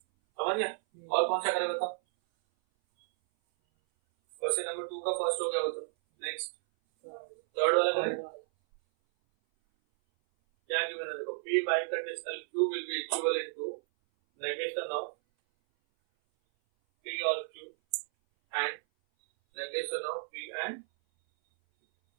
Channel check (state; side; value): silent; left; 56 dB below the other